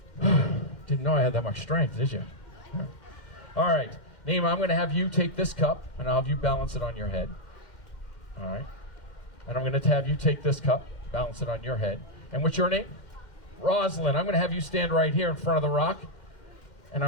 Didn't know I had that much strength, did you? All right, Naima, I'm going to have you take this cup, and I'll have you balance it on your head. All right. And I'm going to have you take this cup, balance it on your head. And what's your name? Rosalind. I'm going to have you stand right here in front of the rock, and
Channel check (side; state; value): right; late; 2.1 ms